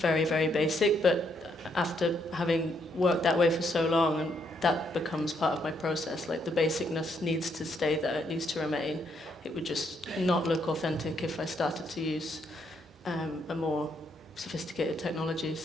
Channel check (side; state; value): both; normal; correlation 0.74